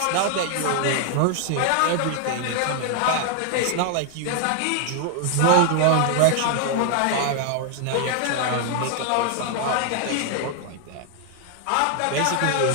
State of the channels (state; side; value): different; both; correlation 0.00